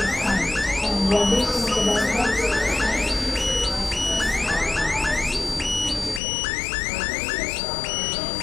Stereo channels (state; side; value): drops out; right; at 6.2 s